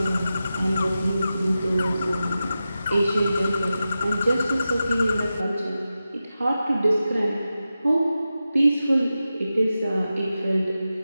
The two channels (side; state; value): both; inverted; correlation -0.92